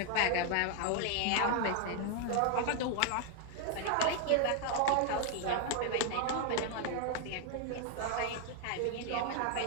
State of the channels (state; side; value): different; both; correlation 0.01